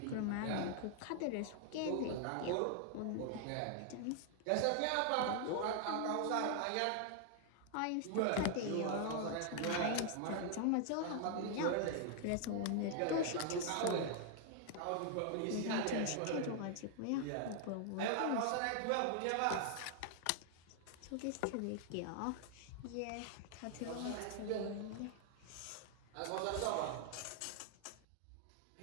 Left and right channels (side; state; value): both; different; correlation 0.00